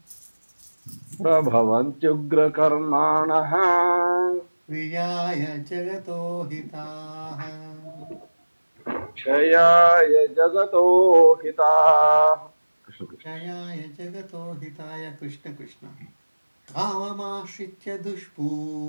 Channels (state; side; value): inverted; both; correlation -1.00